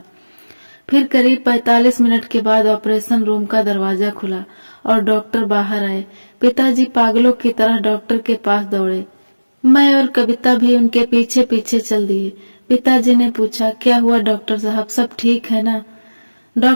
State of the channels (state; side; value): inverted; both; correlation -1.00